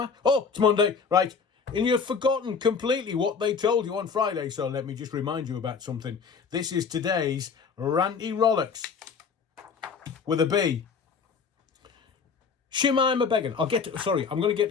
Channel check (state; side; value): quieter; right; 5.7 dB